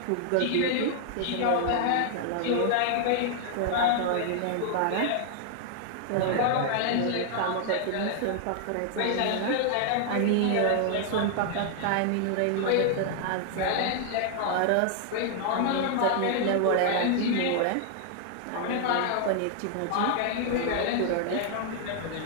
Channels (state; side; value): different; both; correlation 0.00